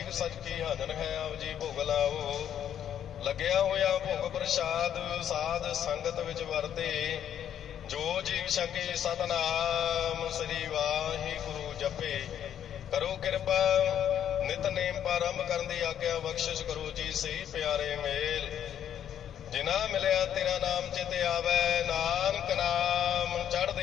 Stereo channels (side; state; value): right; quieter; 9.8 dB